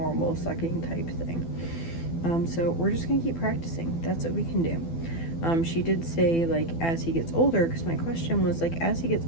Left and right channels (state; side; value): late; right; 12 ms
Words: sucking type thing. So we're just gonna keep practicing. That's what we can do. She did say like as he gets older, because my question was like, as he gets